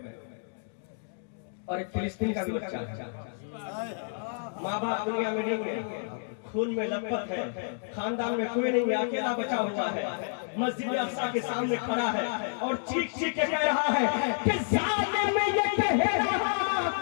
और एक फिलिस्तीन का भी बच्चा, माँ बाप दुनिया में नहीं है, खून में लथपथ है, खानदान में कोई नहीं है, अकेला बचा हुआ है, मस्जिद अक्सा के सामने खड़ा है और चीख चीख के कह रहा है कि जालिम ये कह रहा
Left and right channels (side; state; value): right; silent; digital silence